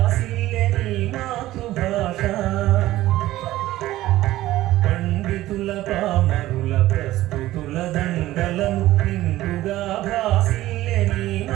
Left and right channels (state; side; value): quieter; left; 15.7 dB